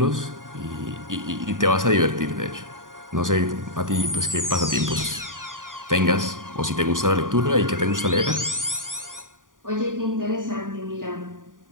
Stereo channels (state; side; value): late; left; 0.89 ms